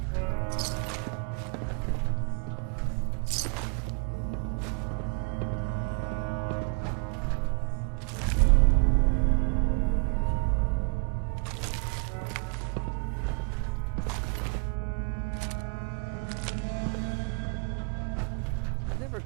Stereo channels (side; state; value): left; quieter; 35.1 dB